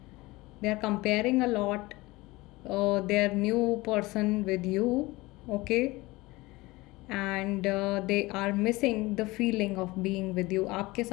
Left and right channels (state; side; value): quieter; right; 21.2 dB